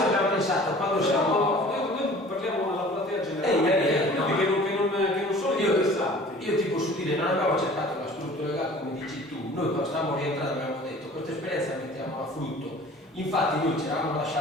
abbiamo pensato quando siamo. Noi parliamo alla platea generale, che non sono interessanti. Io ti posso dire, non abbiamo cercato la struttura legale come dici tu, noi quando stavamo rientrando abbiamo detto questa esperienza la mettiamo a frutto. Infatti noi ci eravamo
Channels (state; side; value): normal; both; correlation 0.46